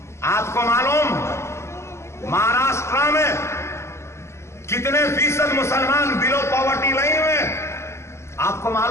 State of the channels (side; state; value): right; late; 0.13 ms